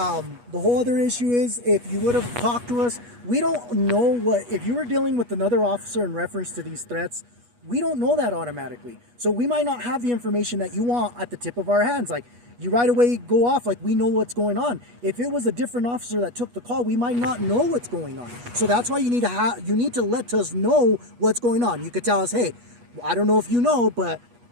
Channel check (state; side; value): late; left; 8.3 ms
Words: whole other issue is if you would have talked to us, we don't know if you were dealing with another officer in reference to these threats, we don't know that automatically. So we might not have the information that you want at the tip of our hands. Like, you right away go off like we know what's going on. If it was a different officer that took the call, we might not know what's going on. So that's why you need to let us know what's going on. You could tell us, hey, I don't know if you know, but